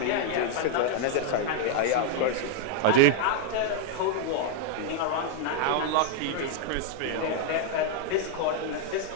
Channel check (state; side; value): different; both; correlation 0.00